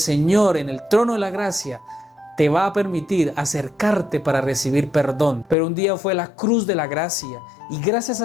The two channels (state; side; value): drops out; right; at 5.6 s